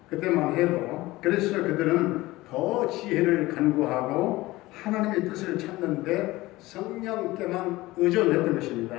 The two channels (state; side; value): quieter; right; 19.0 dB